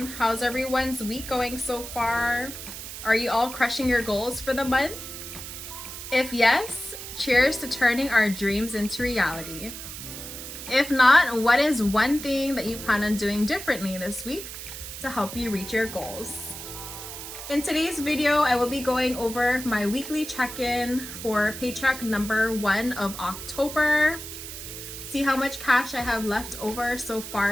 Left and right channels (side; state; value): right; noise; hiss, 10 dB below the sound